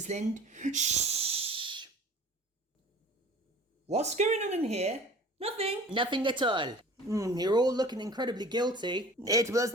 Linde? Shh! What's going on in here? Nothing. Nothing at all. You're all looking incredibly guilty. It was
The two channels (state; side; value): normal; both; correlation 0.44